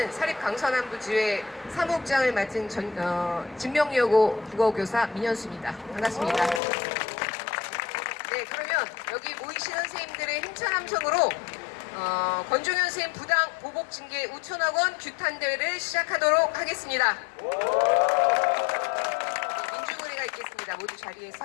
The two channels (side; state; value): right; drops out; at 6.6 s